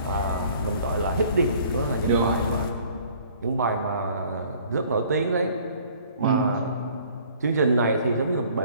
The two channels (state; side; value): inverted; both; correlation -0.55